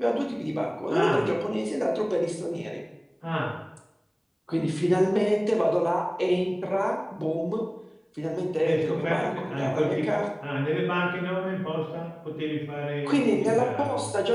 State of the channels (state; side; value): identical; both; correlation 1.00